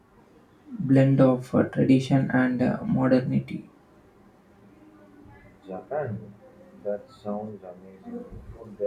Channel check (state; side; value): identical; both; correlation 1.00